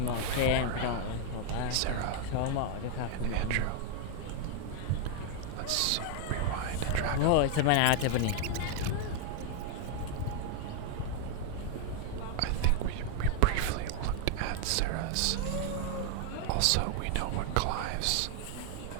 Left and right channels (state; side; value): different; both; correlation 0.00